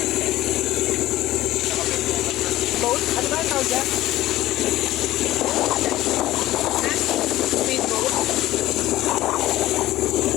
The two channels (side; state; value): right; quieter; 15.7 dB